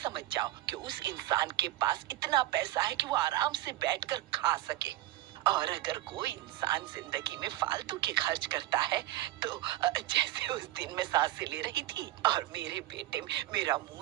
जाओ कि उस इंसान के पास इतना पैसा है कि वो आराम से बैठकर खा सके। और अगर कोई इंसान जिंदगी में फालतू के खर्च करता है तो जैसे उस दिन मैं सांसें ले रही थी और मेरे बेटे मेरा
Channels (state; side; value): quieter; left; 15.7 dB